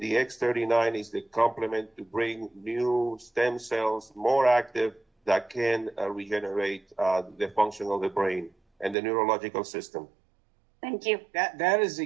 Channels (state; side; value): drops out; left; at 9.0 s